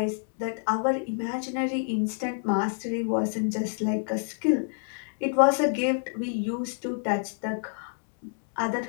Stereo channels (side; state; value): right; silent; digital silence